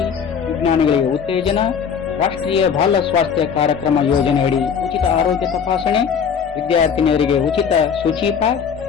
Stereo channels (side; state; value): right; quieter; 6.9 dB